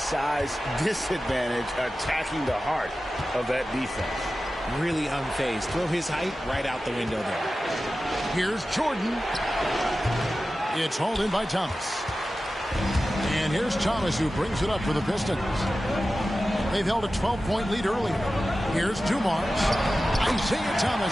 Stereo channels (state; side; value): normal; both; correlation 0.94